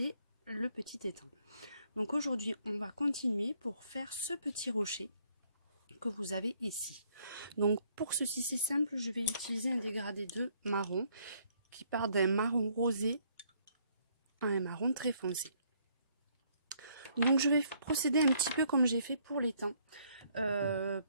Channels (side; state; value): both; inverted; correlation -0.66